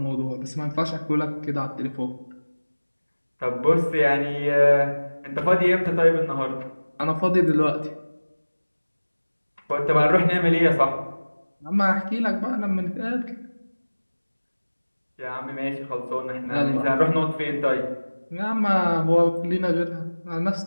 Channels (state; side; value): inverted; both; correlation -1.00